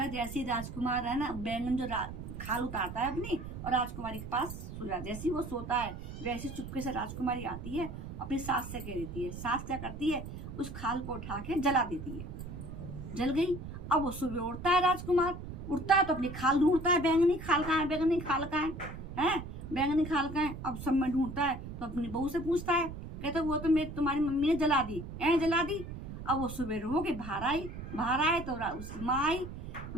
जैसे राजकुमार है ना बैंगन जो खाल उतारता है अपनी और राजकुमारी के पास सो जाता है, जैसे ही वो सोता है वैसे चुपके से राजकुमारी आती है, अपनी सास से कह देती है। सास क्या करती है, उस खाल को उठा के जला देती है, जल गई। अब वो सुबह उठता है, राजकुमार उठता है तो अपनी खाल ढूंढता है, बैंगनी खाल कहाँ है, बैंगनी खाल कहाँ है, बैंगनी खाल कहाँ है। अब सब में ढूंढता है तो अपनी बहू से पूछता है, कहता वो तो मेरी तुम्हारी मम्मी ने जला दी, जला दी। अब वो सुबह रो के बाहर आए तो उसकी माँ आई।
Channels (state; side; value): noise; right; rumble, 9 dB below the sound